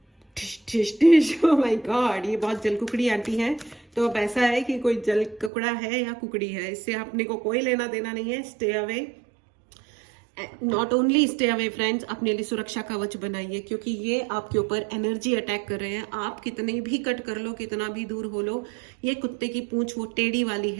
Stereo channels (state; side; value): drops out; left; at 5.5 s